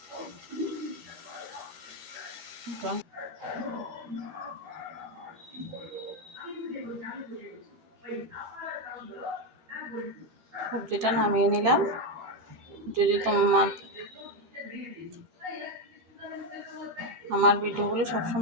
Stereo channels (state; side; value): late; left; 12 ms